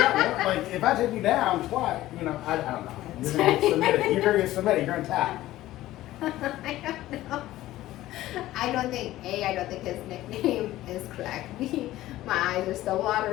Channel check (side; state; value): right; quieter; 15.4 dB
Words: out. Like if I take you down twice, I don't know. You're gonna get submitted. You're gonna get submitted. You're gonna tap. I don't know. I don't think his nickname is correct. B, my eyes are still